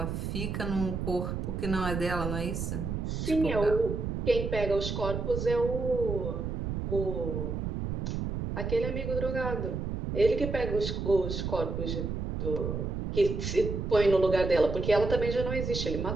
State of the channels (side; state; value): right; noise; rumble, 3 dB below the sound